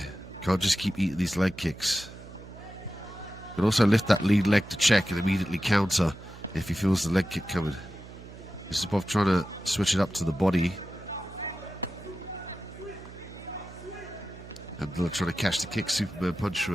Can't just keep eating these leg kicks. Can also lift that lead leg to check and immediately counter if he feels the leg kick coming. Zhussupov trying to switch it up to the body. Abdullah trying to catch the kick. Superman punch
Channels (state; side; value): noise; right; hum, 16 dB below the sound